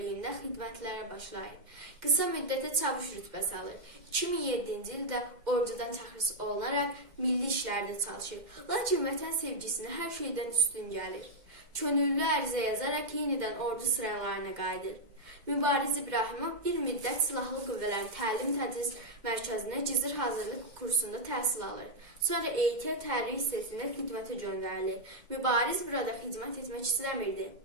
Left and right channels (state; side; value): late; left; 2.1 ms